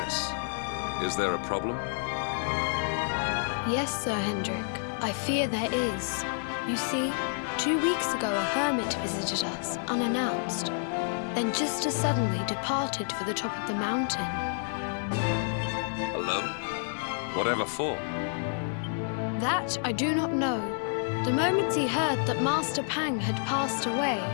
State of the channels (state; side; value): silent; right; 58 dB below the other